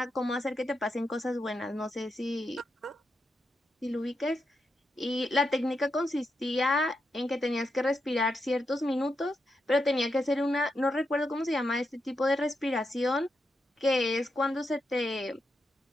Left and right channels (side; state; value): both; normal; correlation 0.85